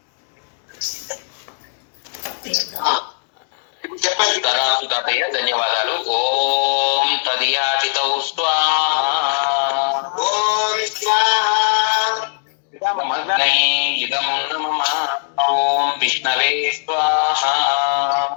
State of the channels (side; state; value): right; silent; digital silence